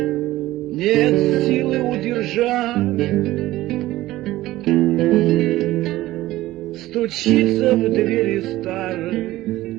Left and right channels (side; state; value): left; quieter; 16.5 dB